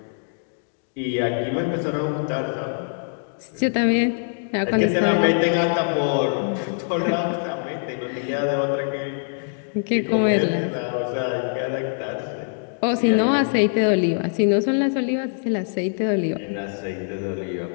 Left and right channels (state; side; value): silent; right; digital silence